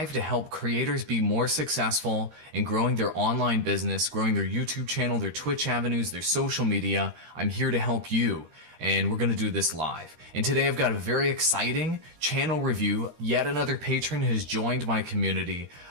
to help creators be more successful in growing their online business, growing their YouTube channel, their Twitch avenues, their social media. I'm here to help you, and we're going to do this live. And today I've got a very exciting channel review. Yet another patron has joined my community,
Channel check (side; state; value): left; late; 23 ms